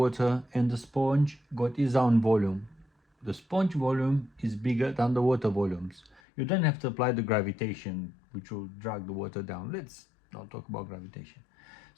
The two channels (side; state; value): right; drops out; at 6.2 s